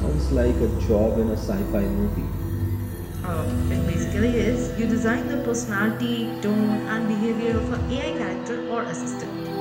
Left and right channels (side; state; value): both; identical; correlation 1.00